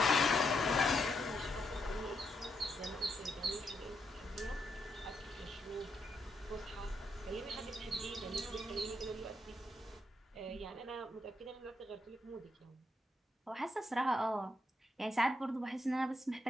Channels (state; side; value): normal; both; correlation 0.80